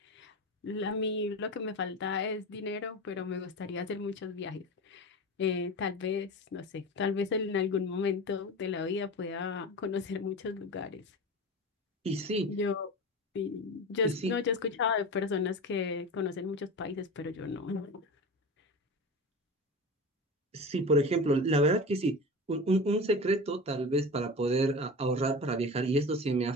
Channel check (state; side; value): normal; both; correlation 0.29